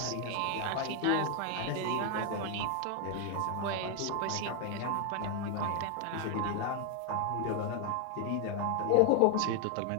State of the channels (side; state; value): both; different; correlation 0.01